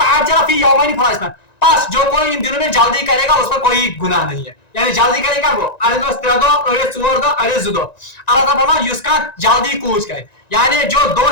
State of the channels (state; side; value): late; right; 1.9 ms